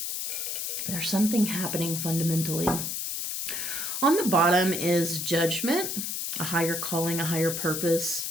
there's something happening fundamentally. On the bottom is judgment, a higher calling, a higher purpose,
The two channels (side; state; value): left; noise; hiss, 3 dB below the sound